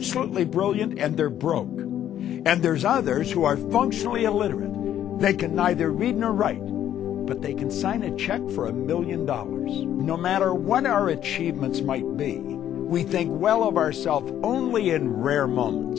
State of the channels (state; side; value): quieter; right; 11.0 dB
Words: brilliant and they're broke? And there's others who are functionally illiterate. They can neither read nor write, but they can sign a check for $1 million. No matter what our achievements might be, we think well of ourselves only in rare